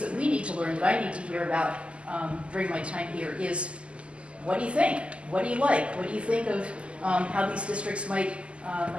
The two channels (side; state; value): left; late; 0.055 ms